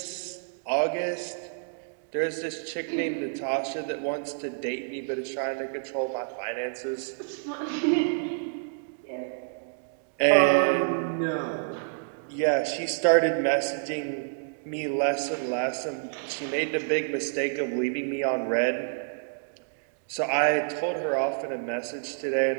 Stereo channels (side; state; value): left; silent; digital silence